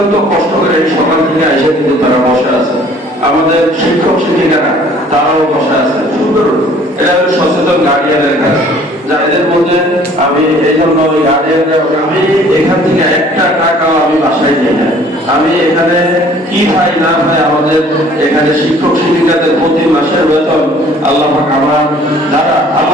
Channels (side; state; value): both; normal; correlation 0.54